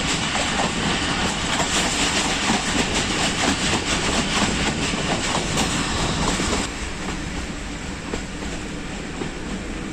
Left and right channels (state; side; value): identical; both; correlation 1.00